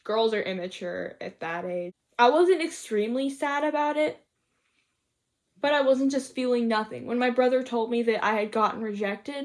Girls are immature at that age. I wasn't extremely sad about it, but I wasn't just feeling nothing. When my brother told me that I had gotten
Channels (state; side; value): identical; both; correlation 1.00